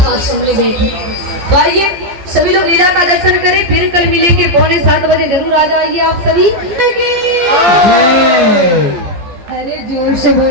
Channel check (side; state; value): left; late; 14 ms